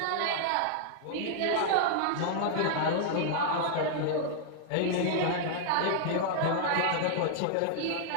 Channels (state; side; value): different; both; correlation -0.01